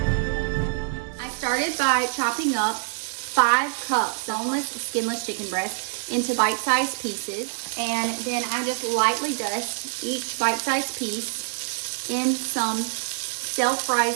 I started by chopping up 5 cups boneless, skinless chicken breast into bite-sized pieces, and then I just lightly dust each bite-sized piece in some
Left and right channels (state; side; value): silent; left; digital silence